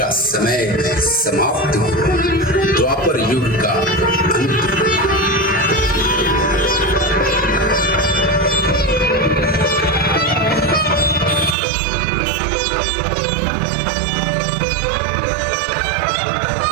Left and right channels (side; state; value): left; drops out; at 11.6 s